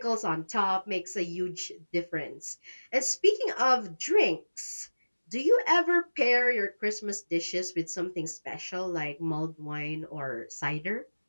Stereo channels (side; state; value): both; inverted; correlation -1.00